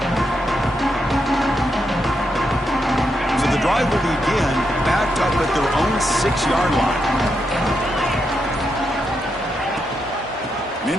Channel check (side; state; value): both; normal; correlation 0.82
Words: So the drive will begin backed up at their own 6-yard line. An